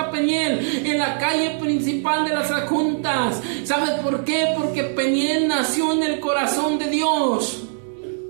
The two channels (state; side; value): silent; left; digital silence